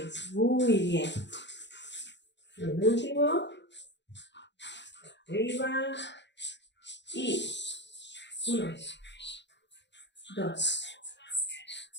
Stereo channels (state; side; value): late; right; 0.52 ms